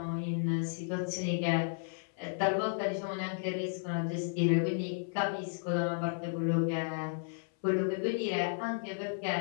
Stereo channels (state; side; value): silent; right; 55 dB below the other